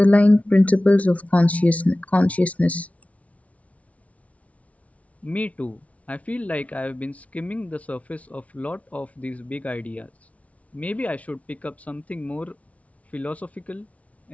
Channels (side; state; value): right; late; 0.066 ms